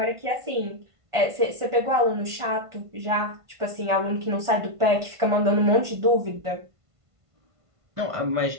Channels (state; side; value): late; left; 1.5 ms